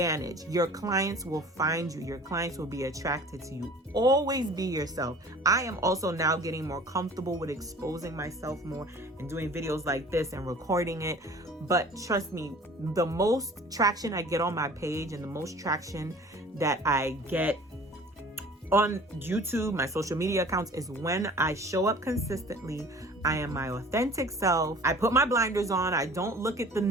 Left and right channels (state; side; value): normal; both; correlation 0.46